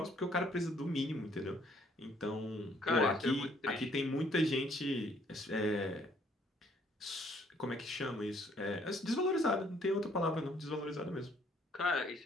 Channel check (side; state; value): both; normal; correlation 0.64